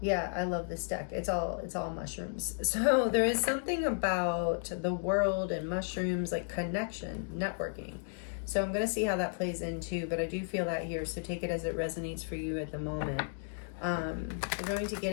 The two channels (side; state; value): right; silent; digital silence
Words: I love this deck. It's all mushrooms. So there is something about the world and mushrooms, like connection, networking. So I'm going to see how that plays in too, but I do feel that here. So take it as it resonates for you at the moment. We're going to